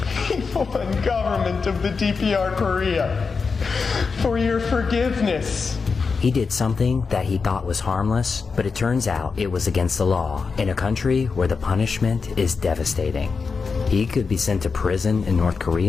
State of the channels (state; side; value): quieter; right; 5.0 dB